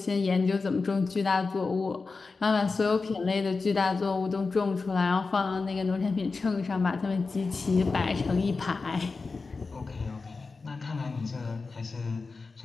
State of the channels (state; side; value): quieter; right; 4.2 dB